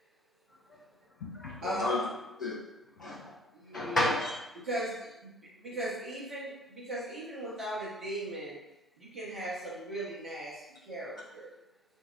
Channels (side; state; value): both; normal; correlation 0.53